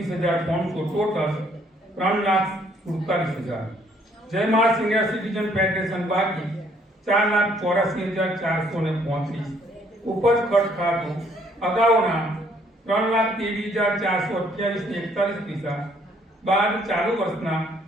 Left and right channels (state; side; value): normal; both; correlation 0.65